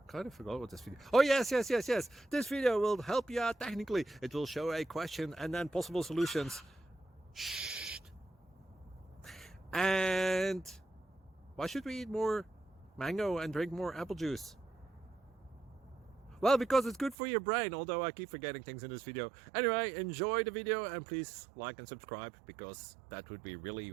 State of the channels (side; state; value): left; drops out; at 17.2 s